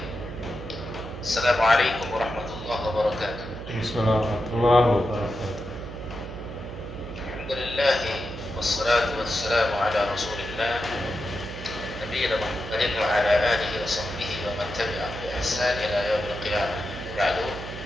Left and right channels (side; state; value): right; noise; hum, 11 dB below the sound